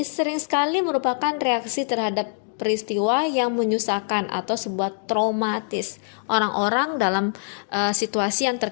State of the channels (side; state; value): right; silent; digital silence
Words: sering sekali merupakan reaksi terhadap peristiwa yang menyusahkan atau sebuah traumatis. Orang-orang dalam situasi yang